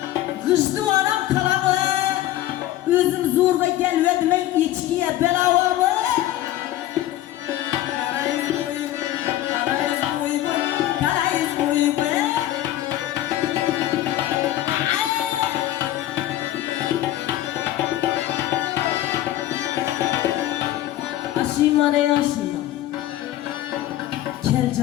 Kıştı anam kalamı, özüm zorga gelmedim ey içkiye belavamı. Karayız boy boy, karayız boy boy, karayız boy boy. Aşima ne aşima, kel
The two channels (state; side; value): quieter; right; 13.9 dB